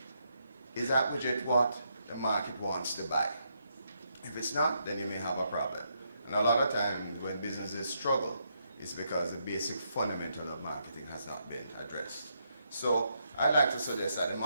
is that widget what the market wants to buy? If it's not, then you may have a problem. And a lot of times when businesses struggle, it's because the basic fundamental of marketing has not been addressed. So I'd like to suggest that the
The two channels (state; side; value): inverted; both; correlation -0.78